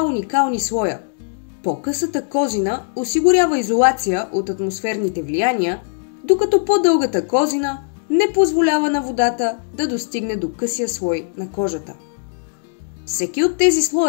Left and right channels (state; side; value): silent; right; digital silence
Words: уникални слоя. По-късата козина осигурява изолация от атмосферните влияния, докато по-дългата козина не позволява на водата да достигне до късия слой на кожата. Всеки от тези